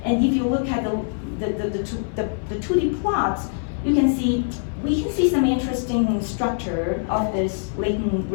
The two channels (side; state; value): right; silent; digital silence